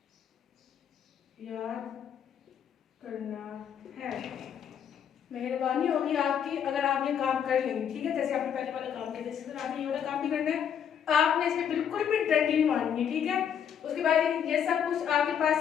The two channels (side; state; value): right; quieter; 8.4 dB